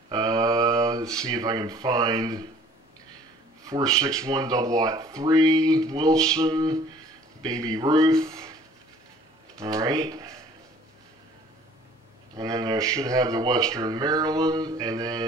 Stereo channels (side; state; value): both; normal; correlation 0.53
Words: Let's see if I can find 461 003, Wilson, Baby Ruth. Alright. And then I should have the Western Maryland, and